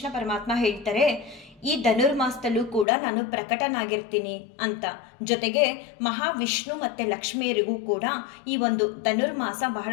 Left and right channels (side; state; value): right; drops out; at 2.9 s